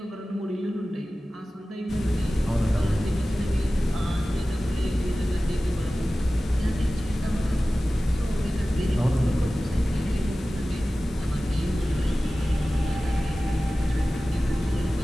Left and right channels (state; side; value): normal; both; correlation 0.96